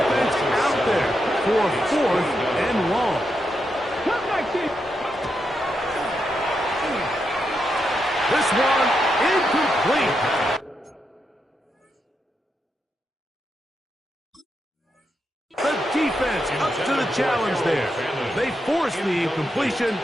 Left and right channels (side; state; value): both; normal; correlation 0.84